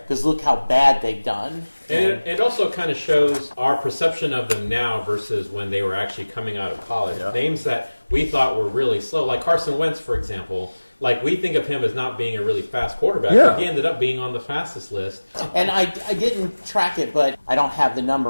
look how bad they've done. And it also kind of shows our perception of them now versus when they were actually coming out of college. Names that we thought were really slow, like Carson Wentz, for example. Like, we think of him as not being a really fast quarterback, but he ended up being on the fastest list. And I didn't track it, but I don't have the number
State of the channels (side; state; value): both; inverted; correlation -1.00